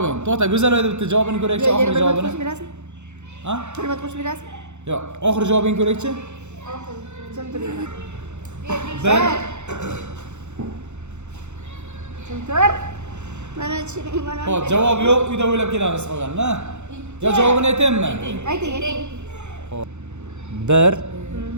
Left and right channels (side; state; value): left; late; 0.83 ms